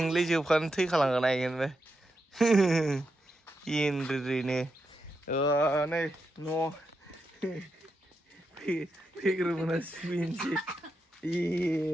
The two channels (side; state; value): both; normal; correlation 0.86